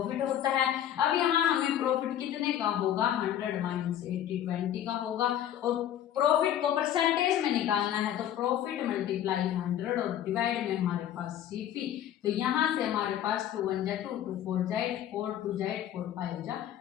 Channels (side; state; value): right; quieter; 11.0 dB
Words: होता है। अब यहाँ हमें प्रॉफिट कितने का होगा, 100 माइनस 80 20 का होगा, और प्रॉफिट को परसेंटेज में निकालना है तो प्रॉफिट मल्टीप्लाई 100 और डिवाइड में हमारे पास सीपी, तो यहाँ से हमारे पास 2 1 जा 2 2 4 जा 8 4 2 जा 8 4 5 जा